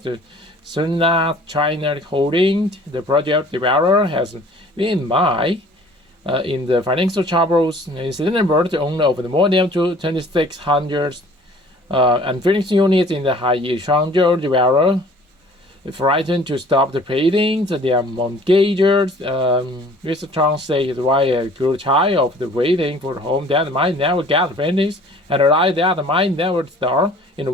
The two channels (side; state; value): both; normal; correlation 0.51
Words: the Sunna China Holding, the project developer, has been in the financial troubles. In September, the owner of the more than 2,600 unfinished units in the Hai Changzhou developer frightened to stop the paintings. Their mortgagers, Mr. Chang said his wife grew tired of the waiting for the home that might never get finished, and the light that might never start. In